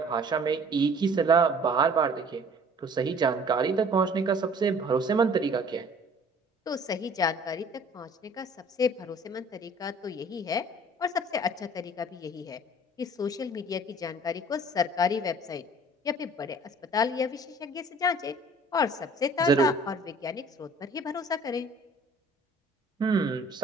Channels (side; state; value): both; normal; correlation 0.52